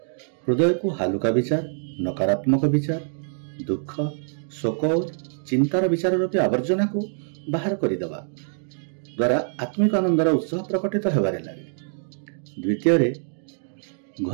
हृदय को हालुका विचार, नकारात्मक विचार, दुख, शोक और चिंतार विचार रूपी आवर्जना को बाहर करदेवा द्वारा आत्मिक आनंदर उत्साह प्रकटित होबारे लगे। द्वितीय रे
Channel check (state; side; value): silent; left; digital silence